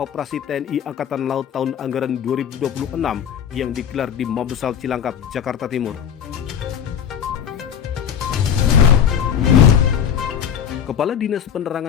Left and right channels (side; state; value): right; quieter; 8.5 dB